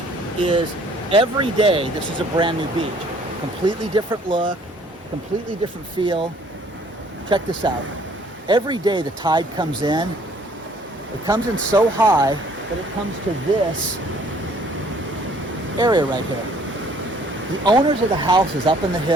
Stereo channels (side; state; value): both; normal; correlation 0.59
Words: is every day this is a brand new beach. Completely different look, completely different feel. Check this out. Every day the tide comes in. It comes in so high that it comes to this area right here. The owners of the houses up in the